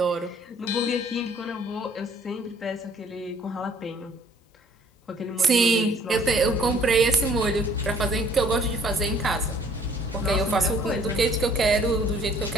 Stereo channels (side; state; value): both; normal; correlation 0.58